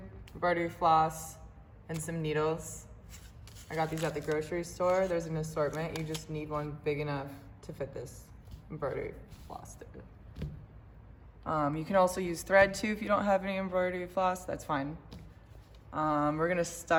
Embroidery floss, and some needles. I got these at the grocery store. There's an assortment. You just need one big enough to fit this embroidery floss through. You can also use thread too if you don't have any embroidery floss, that's fine. We're gonna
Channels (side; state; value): both; identical; correlation 1.00